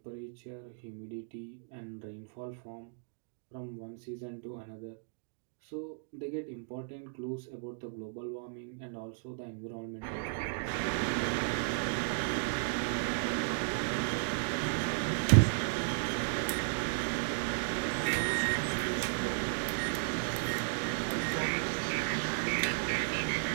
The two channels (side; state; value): left; silent; digital silence